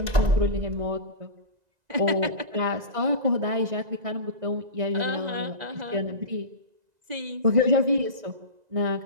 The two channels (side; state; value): left; late; 2.0 ms